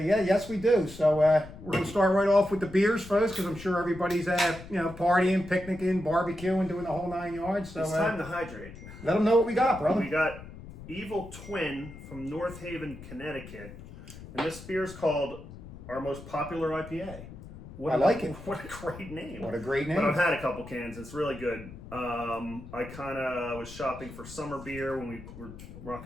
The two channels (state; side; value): noise; left; rumble, 15 dB below the sound